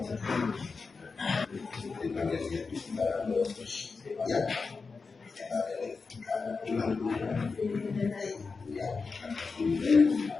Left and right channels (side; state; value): right; quieter; 4.6 dB